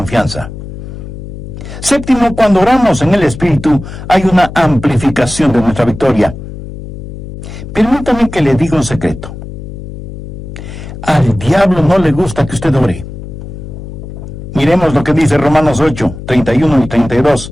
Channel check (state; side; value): noise; left; hum, 11 dB below the sound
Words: Séptimo, cuando oramos en el Espíritu, hay una amplificación de nuestra victoria. Permítame que le diga un secreto. Al diablo no le gusta que usted ore. Miremos lo que dice Romanos 8:31 y